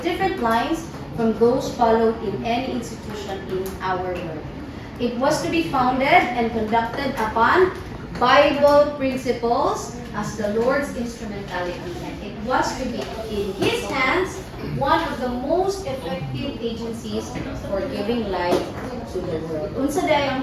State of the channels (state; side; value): identical; both; correlation 1.00